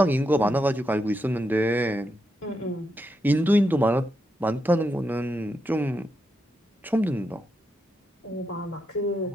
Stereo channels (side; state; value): both; normal; correlation 0.84